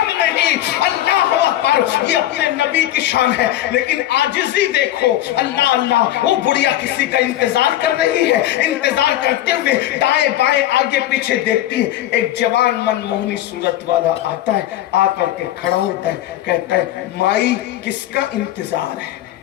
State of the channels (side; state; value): right; quieter; 13.7 dB